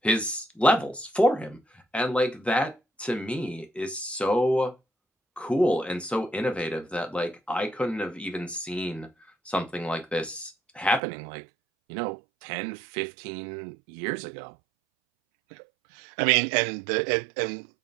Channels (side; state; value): left; drops out; at 11.0 s